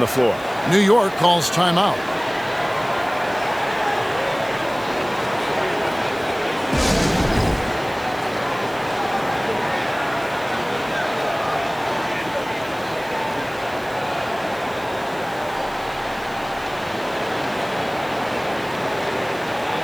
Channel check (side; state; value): right; noise; hiss, 22 dB below the sound